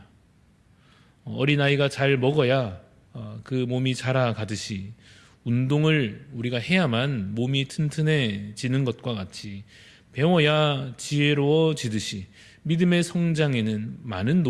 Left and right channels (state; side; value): identical; both; correlation 1.00